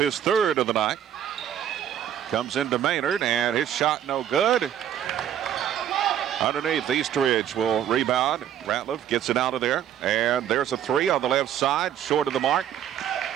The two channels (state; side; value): quieter; left; 10.3 dB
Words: third of the night. Comes into Maynard, and his shot no good. Underneath, Eastridge will rebound. Ratliff gets it out of there, and there's a three on the left side, short of the mark.